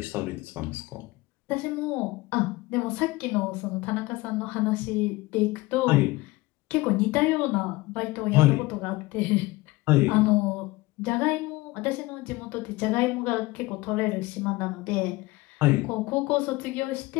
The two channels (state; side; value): quieter; right; 20.8 dB